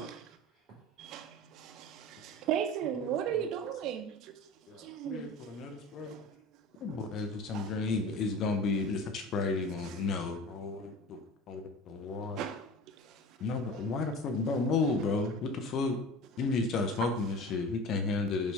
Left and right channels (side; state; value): both; normal; correlation 0.37